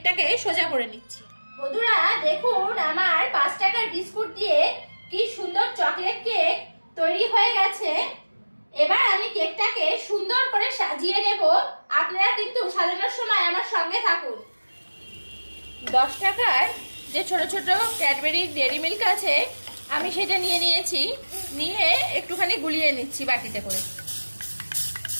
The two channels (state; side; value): inverted; both; correlation -1.00